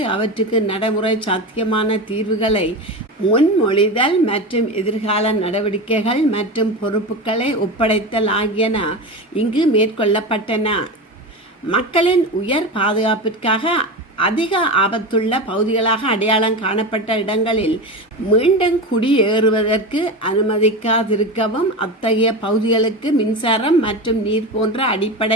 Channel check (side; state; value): both; normal; correlation 0.23